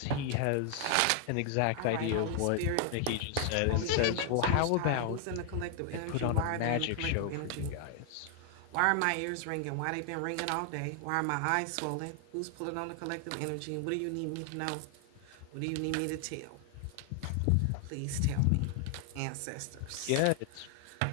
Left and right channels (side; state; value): both; different; correlation 0.00